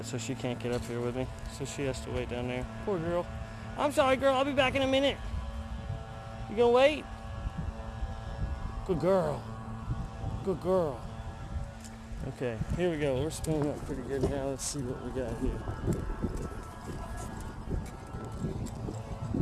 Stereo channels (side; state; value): both; identical; correlation 1.00